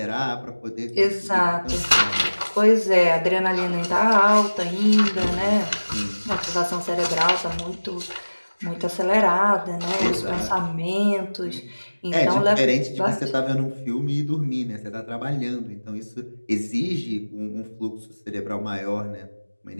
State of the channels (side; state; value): both; inverted; correlation -1.00